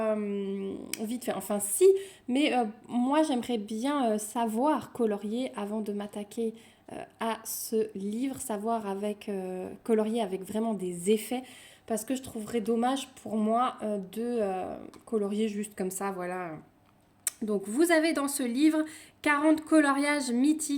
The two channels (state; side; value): identical; both; correlation 1.00